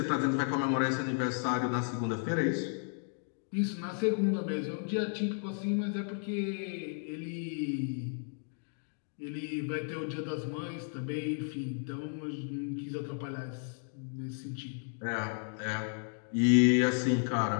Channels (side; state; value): right; silent; 55 dB below the other